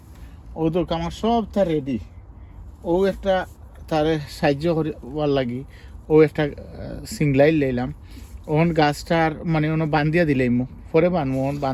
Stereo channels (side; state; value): both; identical; correlation 1.00